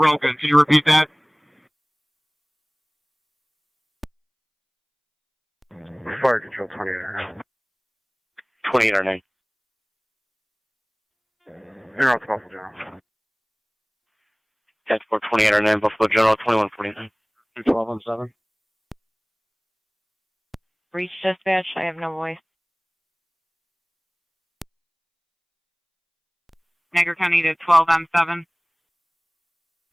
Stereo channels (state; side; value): identical; both; correlation 1.00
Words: Can you repeat that? Fire control 28. 2809. You're out to Buffalo General. That's for 2809, Buffalo General 2149. 1217. Reach dispatch, I have no voice. Niagara County to 12M7.